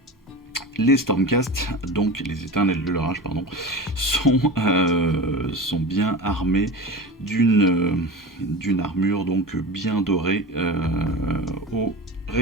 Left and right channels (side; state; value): both; normal; correlation 0.30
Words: les Stormcast, donc les éternels de l'orage, pardon, sont bien armés d'une armure donc bien dorée au